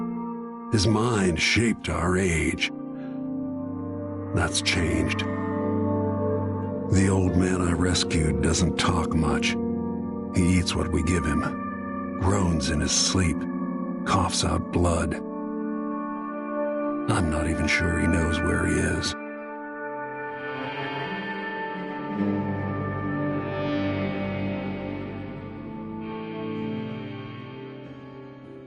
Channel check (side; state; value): both; identical; correlation 1.00